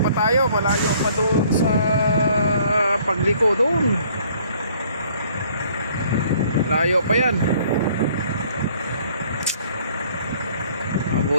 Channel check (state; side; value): inverted; both; correlation -0.59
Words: pa doon sa pagliko doon. Layo pa yan.